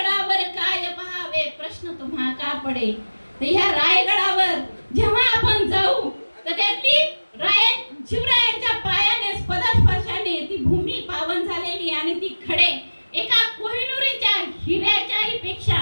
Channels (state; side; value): inverted; both; correlation -1.00